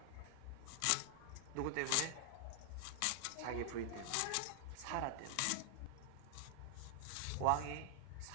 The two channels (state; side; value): different; both; correlation 0.00